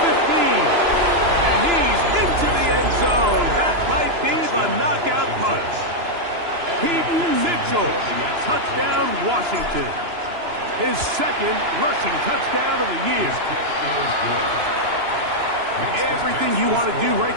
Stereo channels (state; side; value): late; left; 2.9 ms